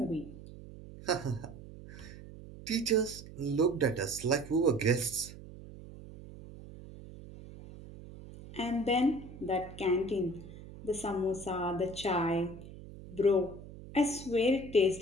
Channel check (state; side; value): noise; right; hum, 15 dB below the sound